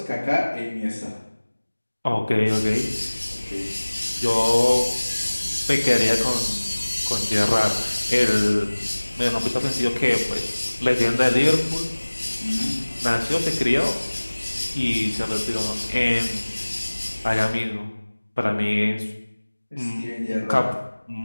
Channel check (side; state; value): both; inverted; correlation -1.00